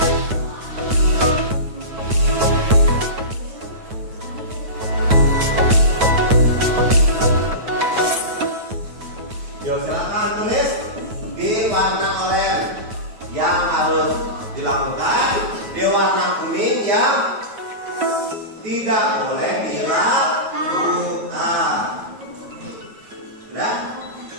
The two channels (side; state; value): left; late; 9.2 ms